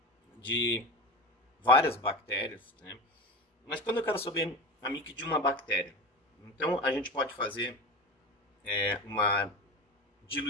de várias bactérias, né? Mas quando eu quero saber a MIC de uma bactéria, então a gente pode fazer uma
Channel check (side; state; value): both; normal; correlation 0.28